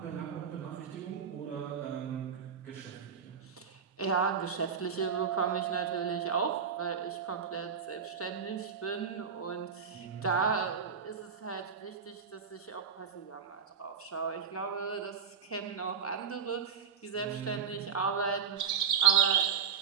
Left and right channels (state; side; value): quieter; left; 6.8 dB